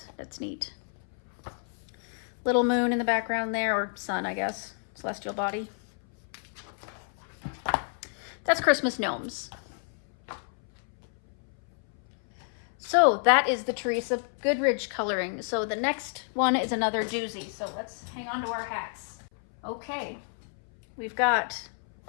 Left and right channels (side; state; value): right; silent; 58 dB below the other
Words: neat. Little moon in the background there, or sun, I guess. Celestial body. That's Christmas gnomes. So that is the Teresa Goodridge coloring. So the next one is another doozy. So let's hang on to our hats. Okay, we've got